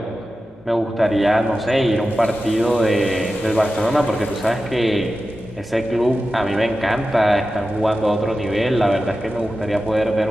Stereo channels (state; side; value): normal; both; correlation 0.93